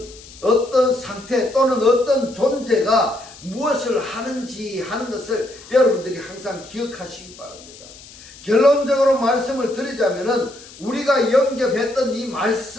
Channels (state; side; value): noise; left; hiss, 20 dB below the sound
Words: 어떤 상태 또는 어떤 존재가 무엇을 하는지 하는 것을 여러분들이 항상 기억하시기 바랍니다. 결론적으로 말씀을 드리자면은 우리가 영접했던 이